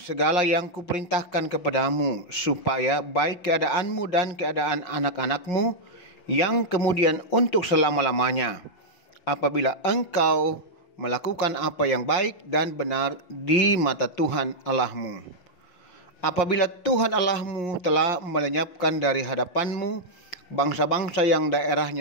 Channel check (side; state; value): right; late; 5.6 ms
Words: yang kuperintahkan kepadamu, supaya baik keadaanmu dan keadaan anak-anakmu yang kemudian untuk selama-lamanya, apabila engkau melakukan apa yang baik dan benar di mata Tuhan Allahmu. Apabila Tuhan Allahmu telah melenyapkan dari hadapanmu bangsa-bangsa yang